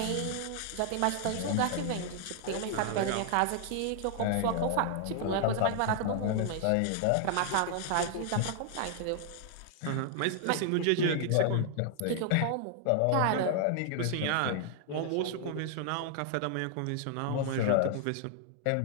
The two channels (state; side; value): different; both; correlation 0.00